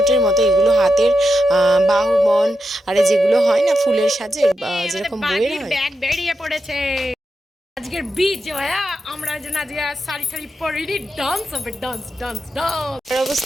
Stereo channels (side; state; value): both; normal; correlation 0.87